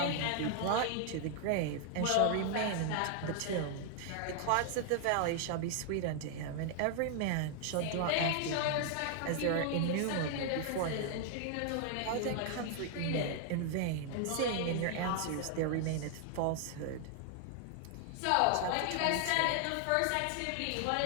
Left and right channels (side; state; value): both; different; correlation 0.00